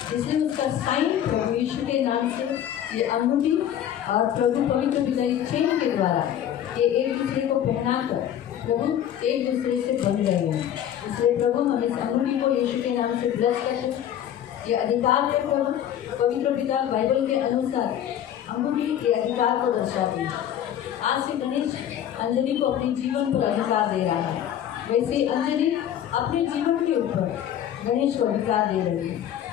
इसलिए उसका साइन प्रभु यीशु के नाम से ये अंगूठी और प्रभु पवित्र विदाई चेन के द्वारा ये एक दूसरे को पहनाकर प्रभु एक दूसरे से बन रहे हैं। इसलिए प्रभु हम इस अंगूठी को यीशु के नाम से ब्लेस करते हैं। ये अधिकार है प्रभु, पवित्र पिता बाइबल के अनुसार अंगूठी ये अधिकार को दर्शाती है। आज से गणेश अंजलि को अपने जीवन पर अधिकार दे रहा है, वैसे अंजलि अपने जीवन के ऊपर गणेश को अधिकार दे रही है।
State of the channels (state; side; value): quieter; right; 10.5 dB